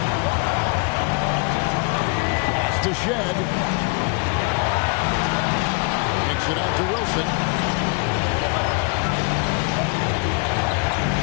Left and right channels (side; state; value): right; quieter; 32.9 dB